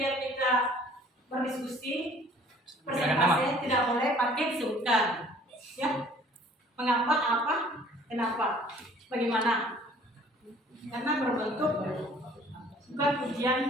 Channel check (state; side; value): normal; both; correlation 0.54